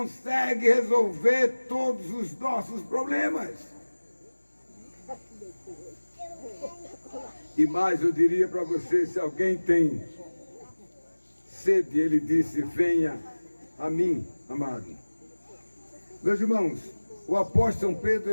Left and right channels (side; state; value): both; inverted; correlation -1.00